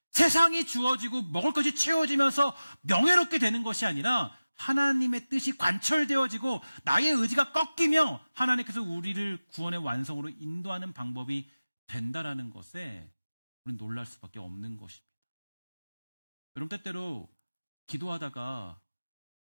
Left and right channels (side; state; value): both; inverted; correlation -0.97